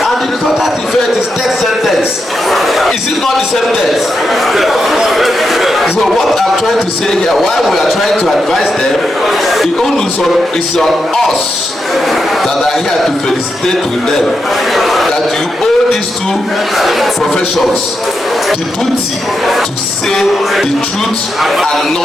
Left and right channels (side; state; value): both; normal; correlation 0.85